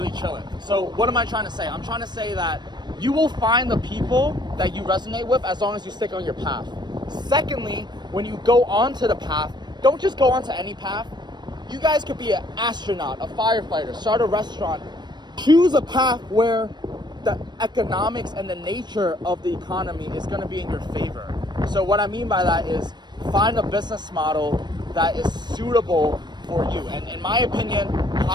chilling. So what am I trying to say? I'm trying to say that you will find the people that you resonate with as long as you stick on your path. Secondly, when you go onto the path, don't just go onto any path. You guys could be an astronaut, a firefighter, start a restaurant. Choose a path where the economics and the nature of the economy is gonna be in your favor. So what I mean by that is find a business model that is suitable for you. And in my opinion,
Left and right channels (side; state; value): left; late; 0.21 ms